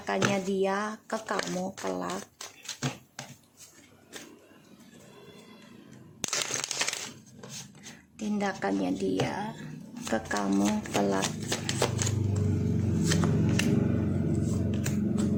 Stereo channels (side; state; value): both; identical; correlation 1.00